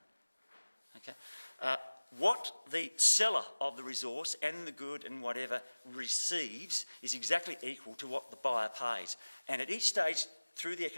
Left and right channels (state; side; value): inverted; both; correlation -1.00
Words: Okay. What the seller of the resource and the good and whatever receives is exactly equal to what the buyer pays. And at each stage through the